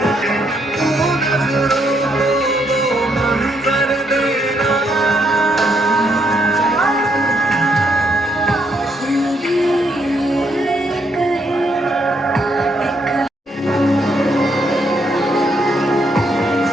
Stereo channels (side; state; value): both; normal; correlation 0.74